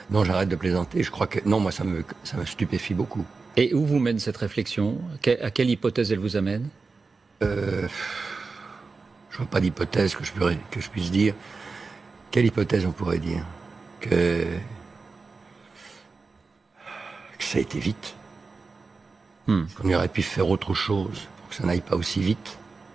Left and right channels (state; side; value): quieter; left; 4.3 dB